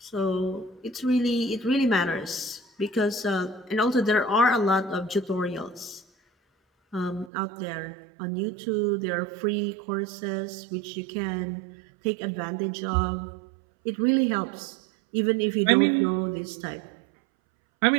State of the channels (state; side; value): drops out; left; at 7.3 s